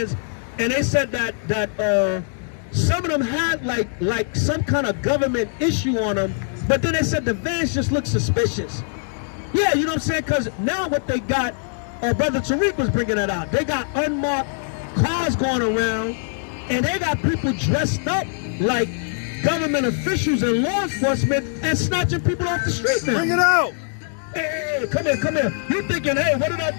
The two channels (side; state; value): right; silent; digital silence